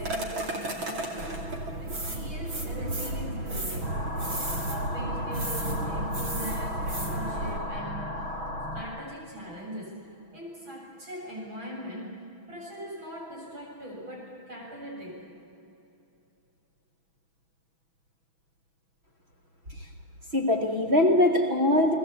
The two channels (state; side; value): late; left; 6.1 ms